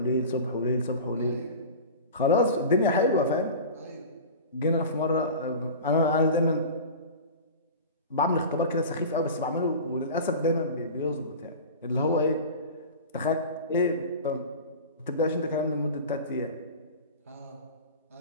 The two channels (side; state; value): both; inverted; correlation -0.33